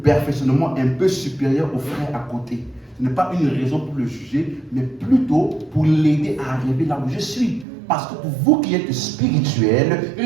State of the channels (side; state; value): left; drops out; at 7.7 s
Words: un peu supérieur au frère à côté, ce n'est pas une raison pour le juger, mais plutôt pour l'aider à arriver là où je suis. Parce que pour vous qui êtes spirituels,